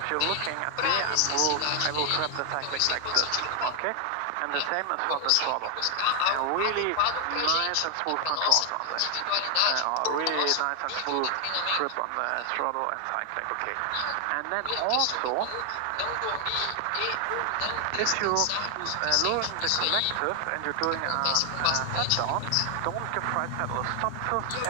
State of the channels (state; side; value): different; both; correlation 0.00